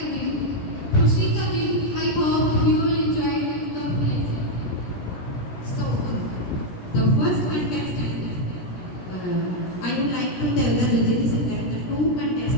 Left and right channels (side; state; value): right; late; 16 ms